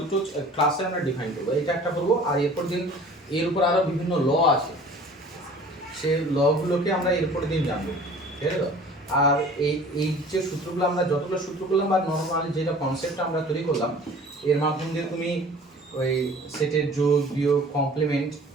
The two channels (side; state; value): both; normal; correlation 0.46